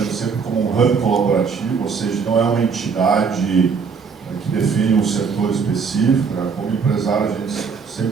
sempre como um hub colaborativo, ou seja, não é uma entidade que define um setor específico. Né? Como empresário, a gente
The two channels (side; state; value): left; quieter; 5.6 dB